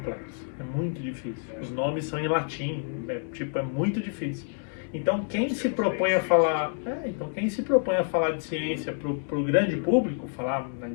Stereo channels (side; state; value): right; silent; 59 dB below the other